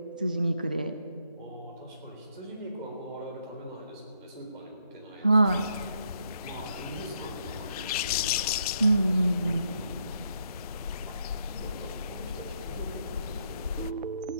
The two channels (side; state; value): both; inverted; correlation -0.75